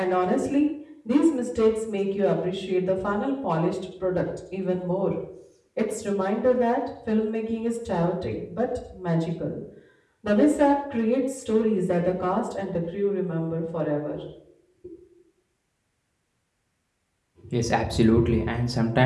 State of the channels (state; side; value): identical; both; correlation 1.00